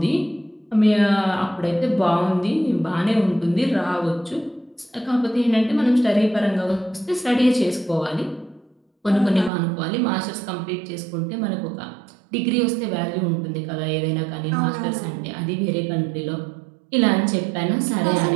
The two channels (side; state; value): left; drops out; at 9.5 s